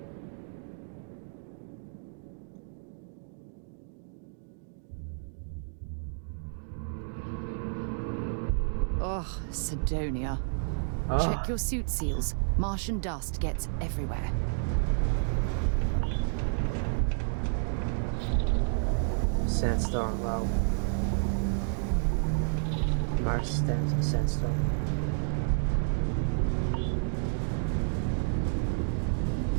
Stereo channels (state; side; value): silent; left; digital silence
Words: Ugh, Sidonia. Ah. Check your suit seals. Martian dust gets everywhere. Sandstorm, wow. Mars sandstorm.